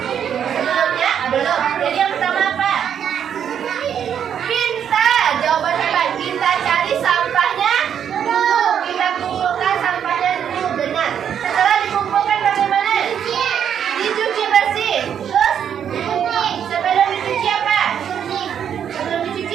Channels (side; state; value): left; quieter; 8.7 dB